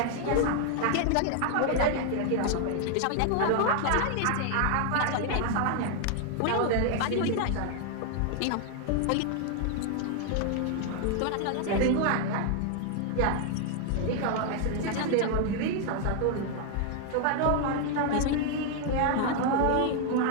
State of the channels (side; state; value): both; different; correlation 0.00